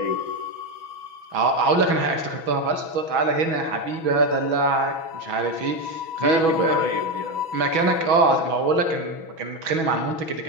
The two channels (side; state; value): left; late; 6.2 ms